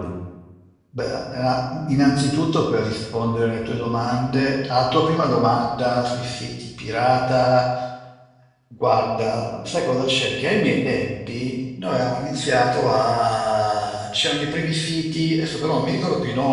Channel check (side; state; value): both; identical; correlation 1.00